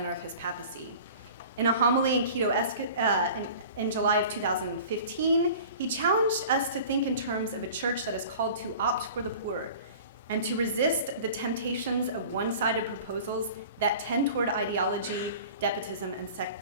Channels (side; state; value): both; inverted; correlation -0.42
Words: of his papacy. In a homily in Quito in July of 2015, he challenged us to think in terms of a church that is called to opt for the poor and to resist the temptations of one-sided proposals that tend toward ideology, Deptism, and